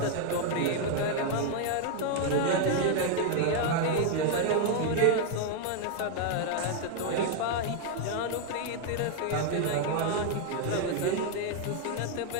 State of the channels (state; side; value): different; both; correlation 0.00